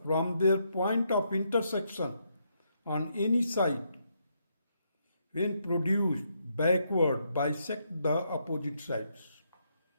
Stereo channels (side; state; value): both; inverted; correlation -0.77